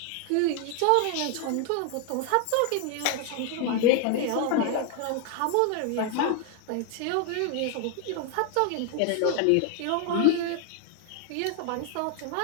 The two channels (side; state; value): both; different; correlation 0.01